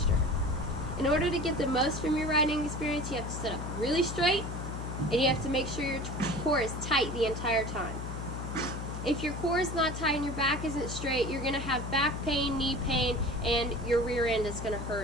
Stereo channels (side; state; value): left; noise; hum, 6 dB below the sound